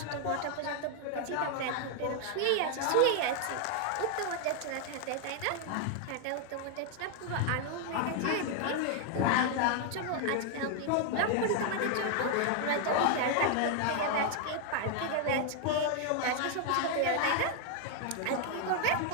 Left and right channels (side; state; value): both; different; correlation 0.00